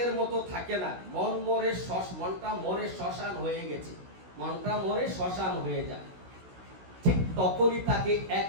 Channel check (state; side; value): late; left; 16 ms